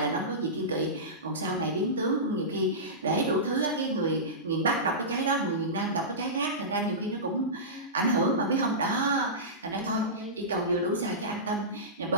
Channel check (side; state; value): both; normal; correlation -0.18